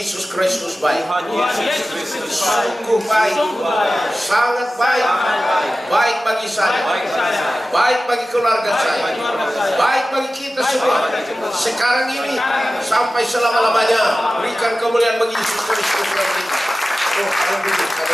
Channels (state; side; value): normal; both; correlation 0.95